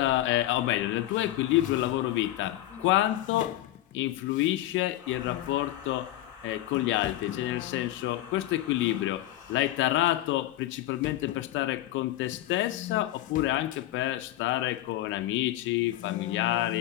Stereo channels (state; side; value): quieter; right; 15.0 dB